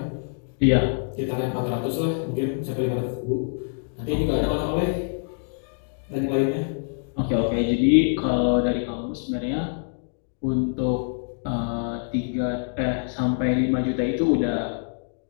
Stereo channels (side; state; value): right; silent; digital silence